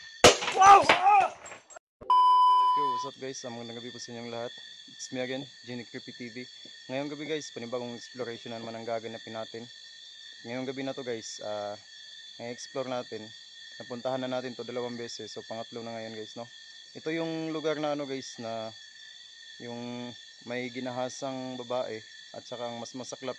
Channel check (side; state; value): both; identical; correlation 1.00